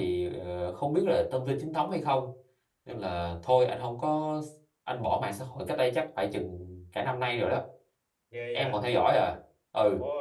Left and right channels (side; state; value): both; identical; correlation 1.00